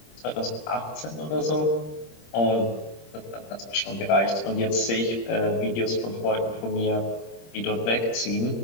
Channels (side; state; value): right; late; 26 ms